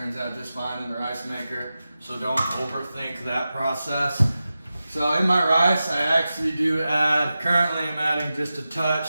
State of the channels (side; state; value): both; inverted; correlation -0.93